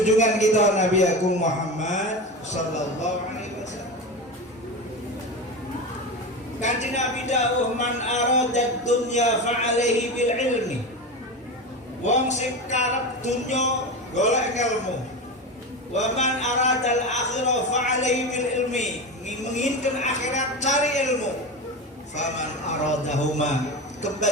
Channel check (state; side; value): normal; both; correlation 0.23